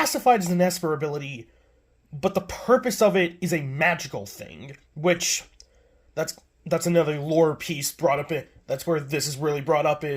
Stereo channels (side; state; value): both; identical; correlation 1.00